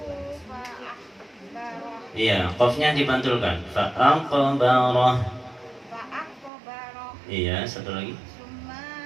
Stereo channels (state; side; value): drops out; left; at 6.5 s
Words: Iya, qafnya dipantulkan. Fa'aqbarah. Iya, satu lagi.